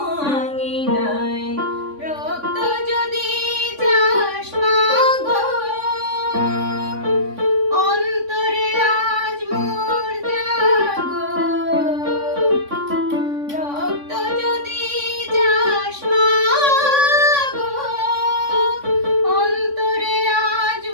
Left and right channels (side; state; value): left; late; 3.6 ms